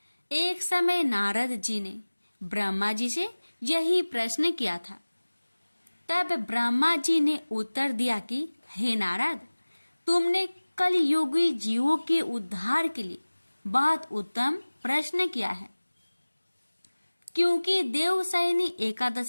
एक समय नारद जी ने ब्रह्मा जी से यही प्रश्न किया था। तब ब्रह्मा जी ने उत्तर दिया कि हे नारद, तुमने कलयुगी जीवों के उद्धार के लिए बहुत उत्तम प्रश्न किया है, क्योंकि देवशयनी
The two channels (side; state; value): both; inverted; correlation -1.00